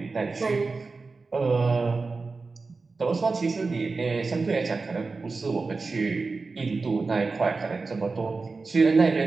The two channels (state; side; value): quieter; left; 4.0 dB